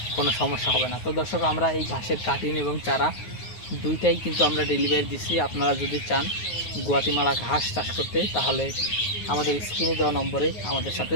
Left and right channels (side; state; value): right; late; 9.4 ms